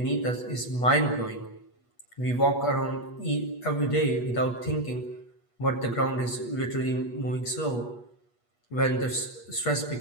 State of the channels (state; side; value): late; right; 8.3 ms